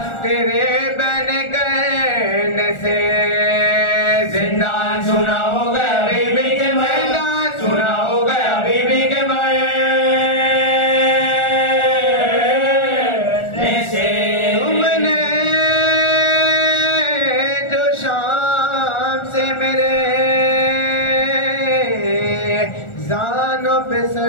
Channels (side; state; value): right; late; 1.4 ms